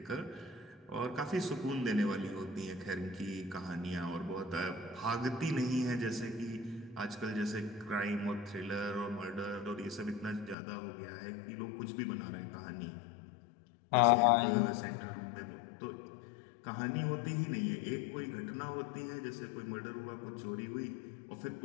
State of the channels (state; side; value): drops out; right; at 10.6 s